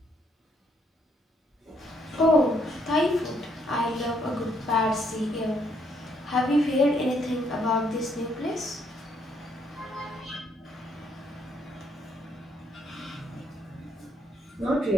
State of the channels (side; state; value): both; normal; correlation 0.71